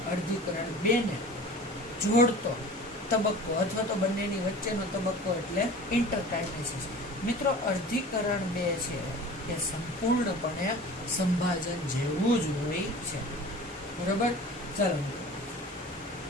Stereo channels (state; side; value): normal; both; correlation 0.40